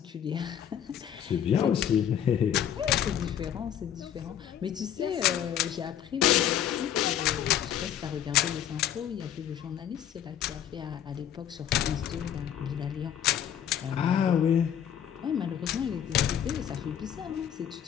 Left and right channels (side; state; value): right; quieter; 9.7 dB